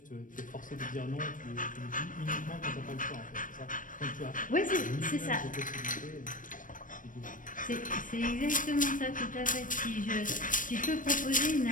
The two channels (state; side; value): late; right; 0.38 ms